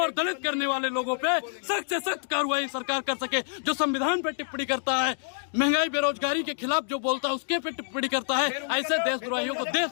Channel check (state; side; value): silent; right; digital silence